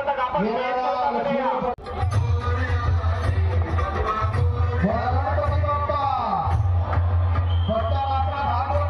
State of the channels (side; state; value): both; identical; correlation 1.00